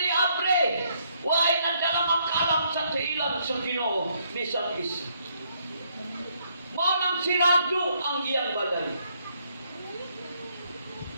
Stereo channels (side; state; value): both; inverted; correlation -0.72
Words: abre. Huwag nadalang ang kalam sa tiilan sa Ginoo, bisan isa. Manang sirado ang iyang balay.